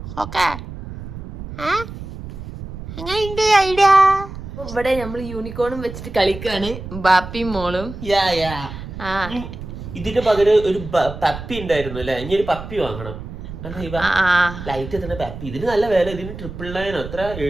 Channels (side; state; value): right; noise; rumble, 11 dB below the sound